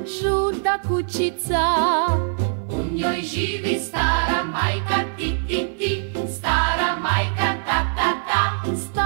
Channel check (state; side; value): silent; left; digital silence